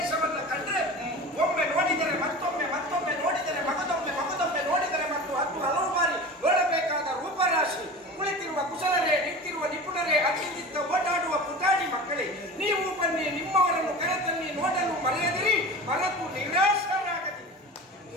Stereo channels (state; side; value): normal; both; correlation 0.34